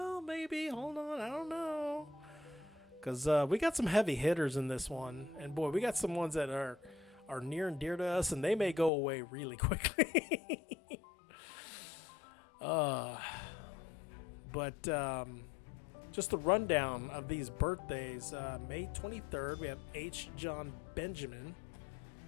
maybe, hold on, I don't know. Because we got some heavy hitters in this one. And, boy, we got some ones that are near and dear to us, and they may go away really quickly. But just the rundown of these birthdays. May 23rd, we have H. John Benjamin,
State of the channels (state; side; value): drops out; right; at 8.9 s